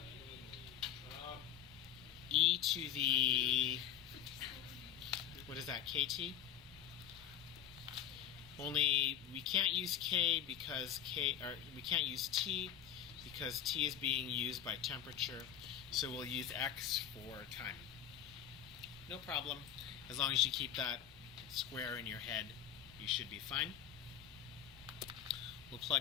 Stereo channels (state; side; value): quieter; right; 10.2 dB